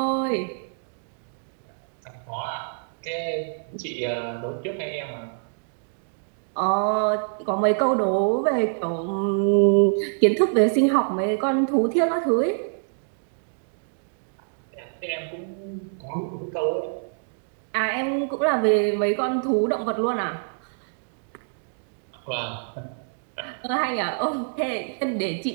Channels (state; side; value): silent; left; digital silence